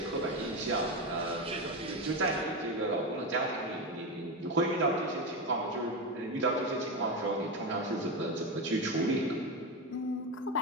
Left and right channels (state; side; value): normal; both; correlation 0.16